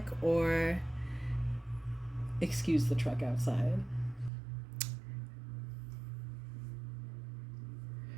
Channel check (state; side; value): drops out; left; at 4.3 s